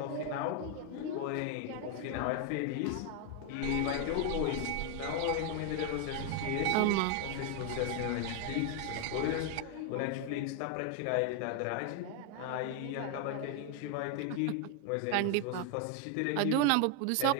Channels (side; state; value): both; different; correlation 0.01